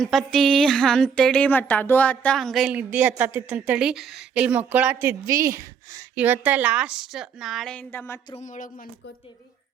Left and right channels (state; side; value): quieter; left; 6.8 dB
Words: ಅಂತೇಳಿ ಮತ್ತು ಅದು ಆತ ಹಂಗೆ ಇಲ್ಲಿ ನಿದ್ದೆ ಹತ್ತತ್ತಿತ್ತಂತೇಳಿ ಇಲ್ಲಿ ಮಕ್ಕಳಾತಿದ್ವಿ. ಇವತ್ತು ಲಾಸ್ಟ್, ನಾಳೆಯಿಂದ ಮತ್ತು ರೂಮ್ ಒಳಗೆ ಮನ್ಕೋತೀವಿ.